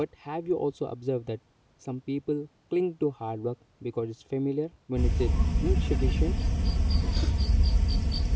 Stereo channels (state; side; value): identical; both; correlation 1.00